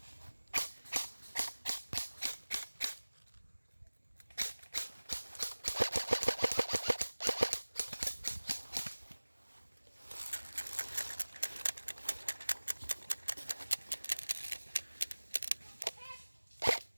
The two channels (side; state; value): both; inverted; correlation -1.00